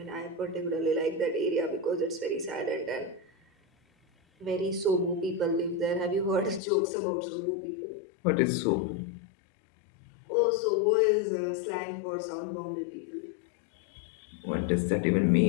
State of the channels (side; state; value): right; drops out; at 6.6 s